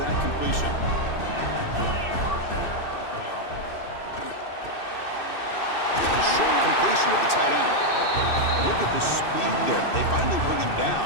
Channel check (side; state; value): right; late; 2.6 ms